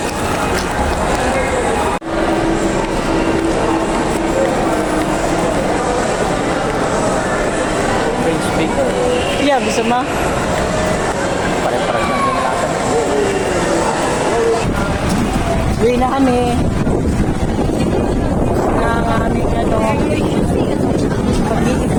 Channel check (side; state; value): both; identical; correlation 1.00